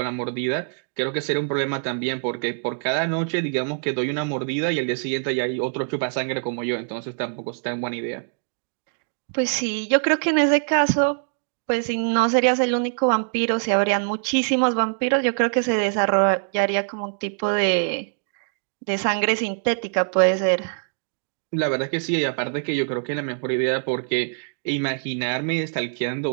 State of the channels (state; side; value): silent; left; digital silence